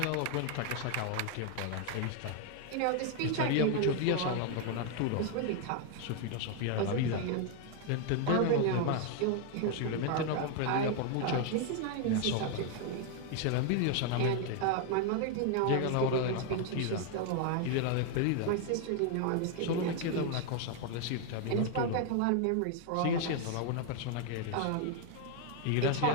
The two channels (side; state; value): both; different; correlation 0.00